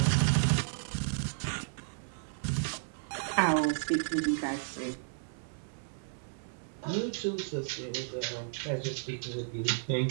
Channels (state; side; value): silent; left; 56 dB below the other